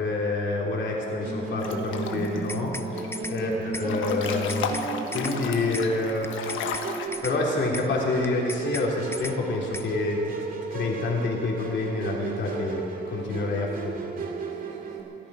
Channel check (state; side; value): normal; both; correlation 0.44